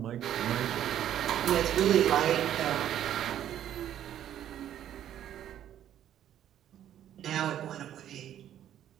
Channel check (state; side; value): quieter; left; 11.0 dB